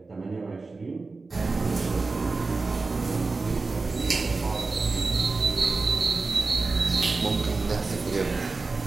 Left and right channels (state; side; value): quieter; left; 3.9 dB